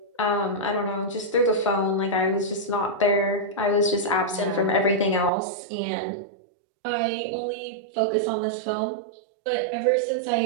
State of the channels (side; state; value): left; drops out; at 5.3 s